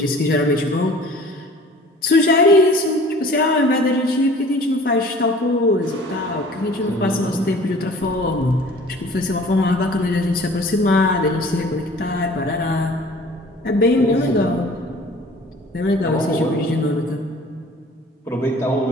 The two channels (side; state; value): both; normal; correlation 0.47